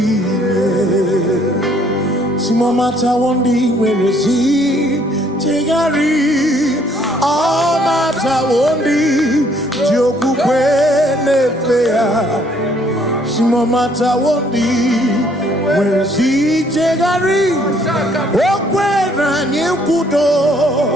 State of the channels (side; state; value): both; normal; correlation 0.64